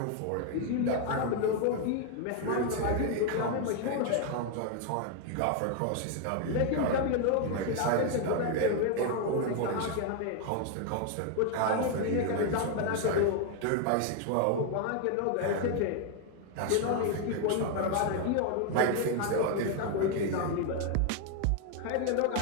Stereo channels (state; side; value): different; both; correlation 0.00